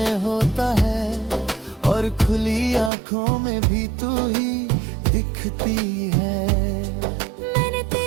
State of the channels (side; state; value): left; drops out; at 2.9 s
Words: होता है, और खुली आंखों में भी तू ही दिखती है। मैंने